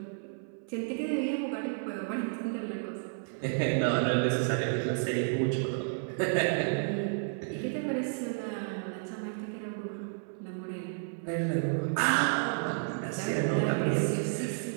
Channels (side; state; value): left; silent; 57 dB below the other